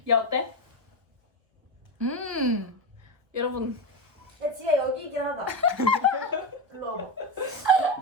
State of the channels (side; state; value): left; late; 1.4 ms